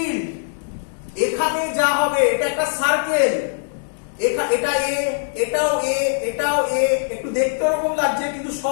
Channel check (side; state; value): right; silent; digital silence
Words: এখানে যা হবে, এটা একটা সার্কেল, এটা এ, এটাও এ, এটাও এ, একটু দেখতে ওরকম লাগছে কিন্তু